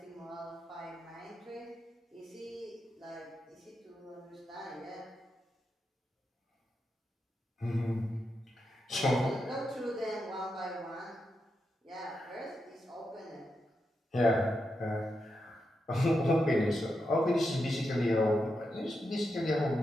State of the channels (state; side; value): normal; both; correlation 0.86